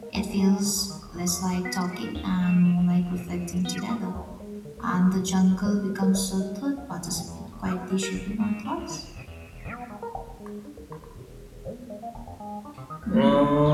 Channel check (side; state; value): both; identical; correlation 1.00